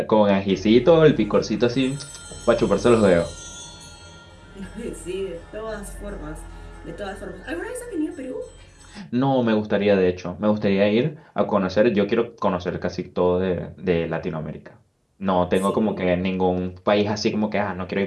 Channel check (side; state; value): both; identical; correlation 1.00